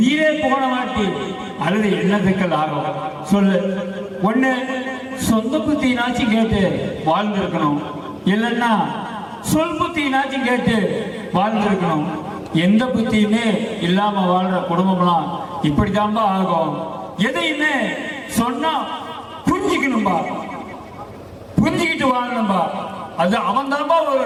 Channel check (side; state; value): both; identical; correlation 1.00